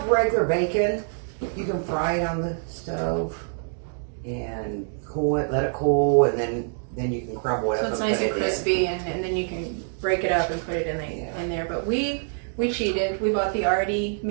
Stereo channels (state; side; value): silent; left; digital silence